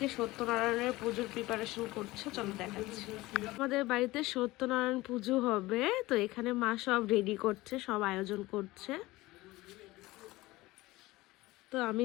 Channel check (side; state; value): right; quieter; 19.3 dB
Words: সত্যনারায়ণের পুজোর প্রিপারেশন করছে, চলো দেখাচ্ছি। আমাদের বাড়িতে সত্যনারায়ণ পুজো হবে, তো এখানে মা সব রেডি করছে, সব আয়োজন করছে। তো আমি